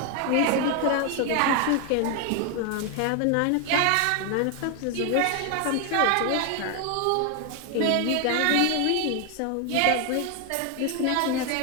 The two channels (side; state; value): both; different; correlation 0.01